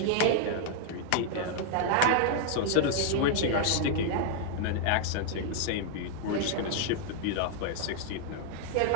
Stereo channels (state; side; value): different; both; correlation 0.00